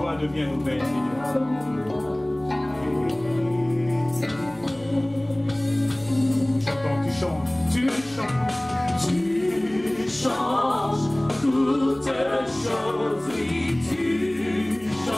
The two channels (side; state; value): left; noise; hum, 26 dB below the sound